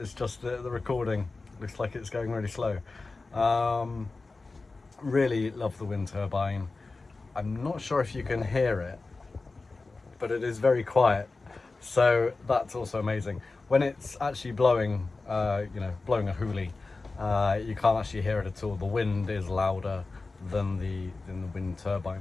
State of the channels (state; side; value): quieter; right; 3.7 dB